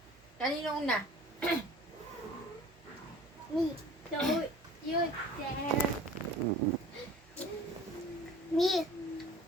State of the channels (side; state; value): both; normal; correlation 0.45